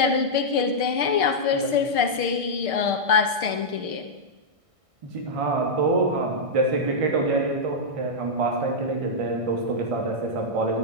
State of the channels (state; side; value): late; left; 1.6 ms